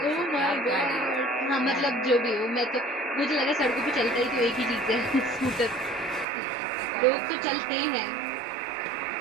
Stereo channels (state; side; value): drops out; left; at 6.2 s